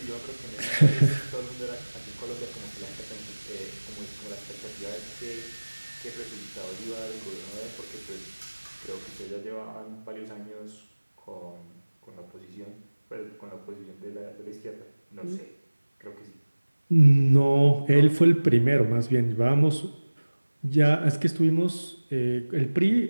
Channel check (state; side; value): inverted; both; correlation -1.00